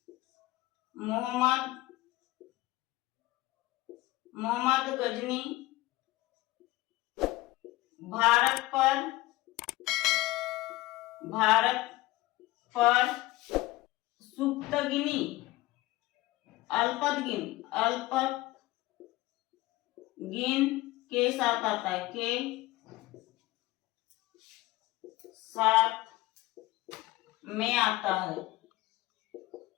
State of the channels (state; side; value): quieter; right; 18.7 dB